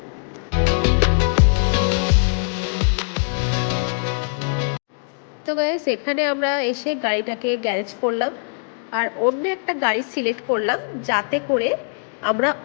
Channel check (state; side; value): silent; right; digital silence